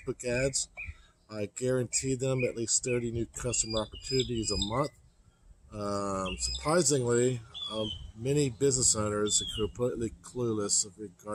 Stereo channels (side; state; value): both; identical; correlation 1.00